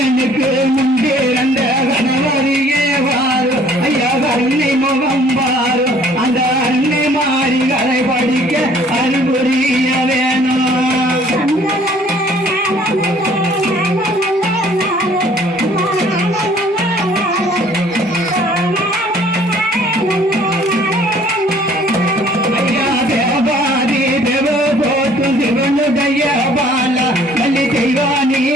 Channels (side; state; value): both; normal; correlation 0.56